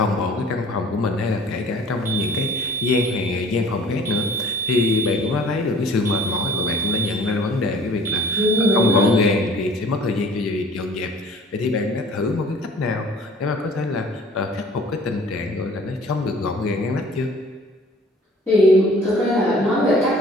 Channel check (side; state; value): both; normal; correlation 0.49